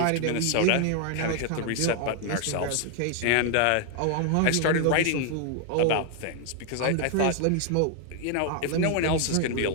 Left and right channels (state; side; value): different; both; correlation 0.00